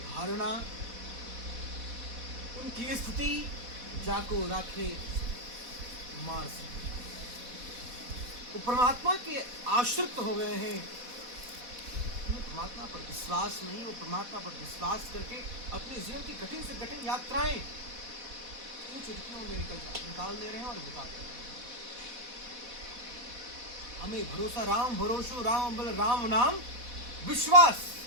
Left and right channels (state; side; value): late; left; 4.1 ms